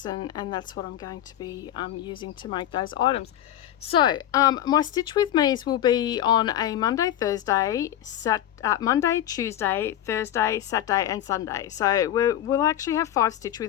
and that's what I'm going to be using to make those items. So my Stitch With Me's will be on a Monday, Tuesday, Thursday, Saturday and Sunday. So we'll actually have 5 Stitch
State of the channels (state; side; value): quieter; right; 12.1 dB